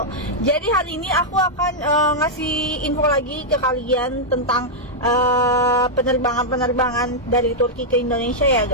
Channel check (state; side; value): normal; both; correlation -0.06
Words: Jadi hari ini aku akan ngasih info lagi ke kalian tentang penerbangan-penerbangan dari Turki ke Indonesia ya